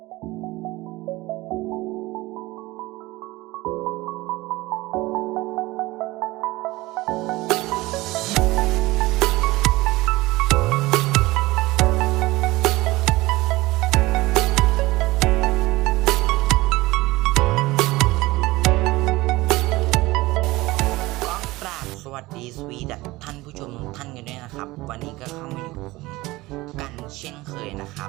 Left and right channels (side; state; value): left; quieter; 20.0 dB